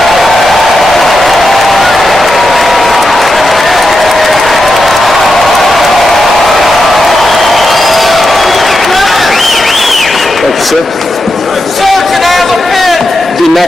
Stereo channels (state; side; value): normal; both; correlation 0.87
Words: Sir? Sir, can I have a pen? The